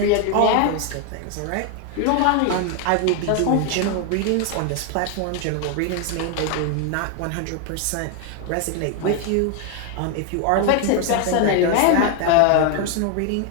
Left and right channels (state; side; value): different; both; correlation 0.01